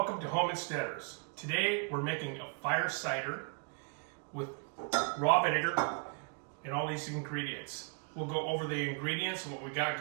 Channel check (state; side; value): quieter; left; 36.6 dB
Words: to Home Insteaders. Today we're making a fire cider with raw vinegar and all these ingredients. We'll go over the ingredients and what we got